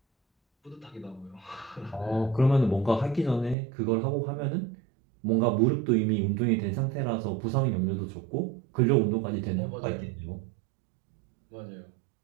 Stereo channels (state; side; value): drops out; left; at 3.6 s